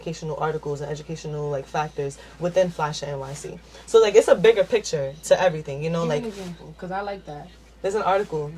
articles and educational like factors within Flash NYC. So like it's a bigger picture to everything, you know, Give me like an example, because I like that. there's an article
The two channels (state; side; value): identical; both; correlation 1.00